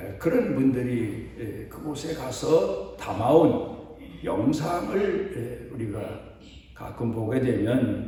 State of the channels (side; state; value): both; identical; correlation 1.00